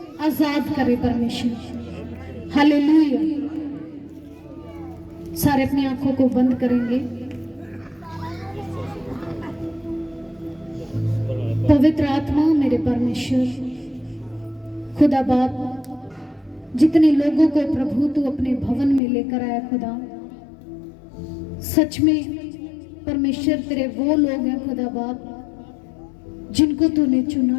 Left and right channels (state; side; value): drops out; right; at 19.0 s